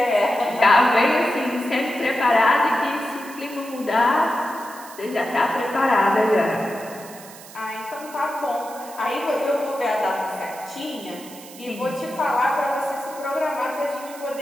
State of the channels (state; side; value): noise; right; hiss, 18 dB below the sound